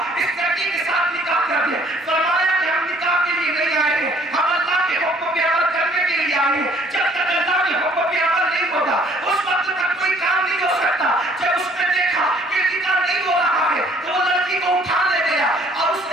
اس لڑکی کے ساتھ نکاح کر دے. فرمایا کہ ہم نکاح کے لیے نہیں آئے ہیں, ہم اللہ کے حکم پہ عمل کرنے کے لیے آئے ہیں. جب تک اللہ کے حکم پہ عمل نہیں ہوگا اس وقت تک کوئی کام نہیں ہو سکتا. جب اس نے دیکھا کہ نکاح نہیں ہو رہا ہے تو وہ لڑکی کو اٹھا لے گیا اور اس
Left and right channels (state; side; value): normal; both; correlation 0.59